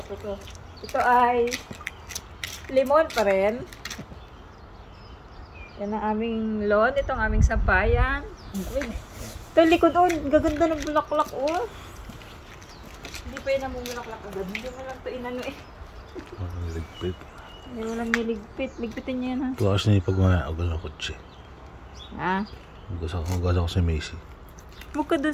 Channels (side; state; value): both; identical; correlation 1.00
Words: ito. Ito ay lemon pa rin. Yan ang aming lawn. Ito ang aming sampayan. Ito likod doon. Gaganda ng bulaklak oh. Hindi pa yun namumulaklak agad. Hindi mo lang ito inano eh. Walang niligpit. Hindi mo lang niligpit. Ligpitin niya yan ha. Tuwas na yung pag-maagal ng kotse. Ha? Maghugas ako sa Macy. Huwag ka